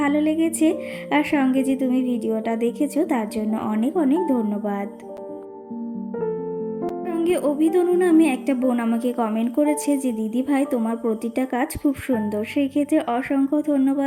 ভালো লেগেছে, আর সঙ্গে যে তুমি ভিডিওটা দেখেছো তার জন্য অনেক অনেক ধন্যবাদ। সঙ্গে অভিতনু নামে একটা বোন আমাকে কমেন্ট করেছে যে দিদি ভাই তোমার প্রতিটা কাজ খুব সুন্দর। সেই ক্ষেত্রে অসংখ্য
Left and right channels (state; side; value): identical; both; correlation 1.00